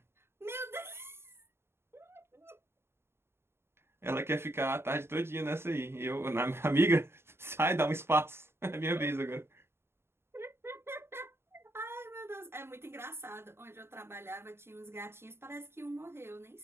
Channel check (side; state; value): left; late; 0.12 ms